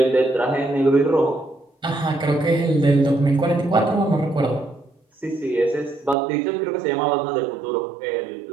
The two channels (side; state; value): left; drops out; at 6.2 s